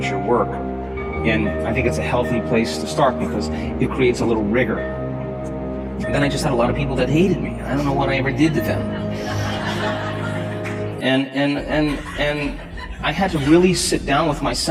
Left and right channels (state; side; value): identical; both; correlation 1.00